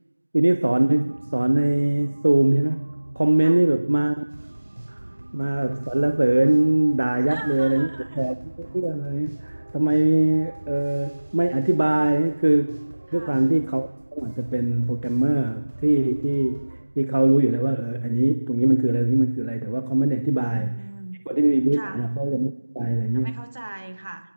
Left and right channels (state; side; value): inverted; both; correlation -1.00